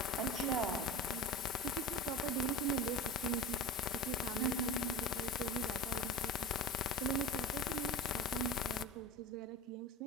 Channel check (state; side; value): normal; both; correlation 0.31